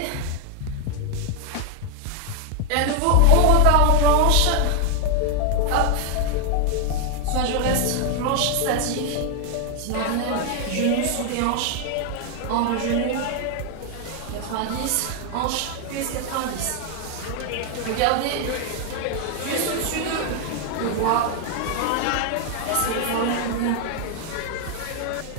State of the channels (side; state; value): both; different; correlation 0.01